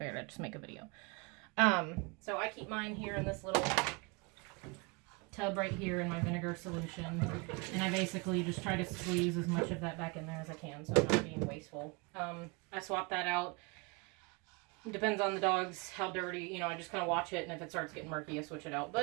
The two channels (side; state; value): left; quieter; 28.7 dB